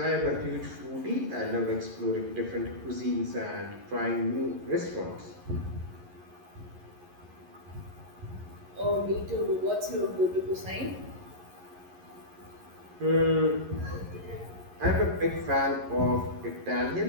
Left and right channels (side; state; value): left; late; 11 ms